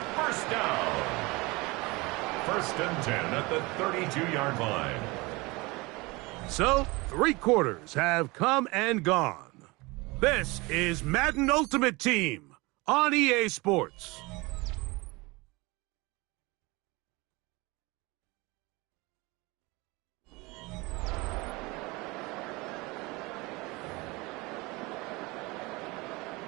first down. 1st and 10 at the 32-yard line. So, 3 quarters have come and gone. This is Madden Ultimate Team on EA Sports.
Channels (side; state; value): left; quieter; 23.9 dB